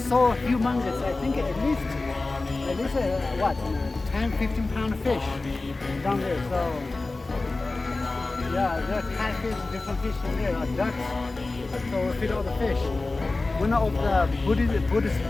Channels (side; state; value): right; quieter; 3.3 dB